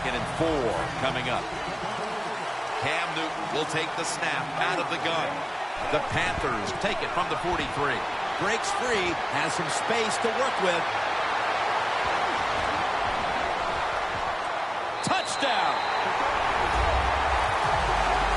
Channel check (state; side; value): identical; both; correlation 1.00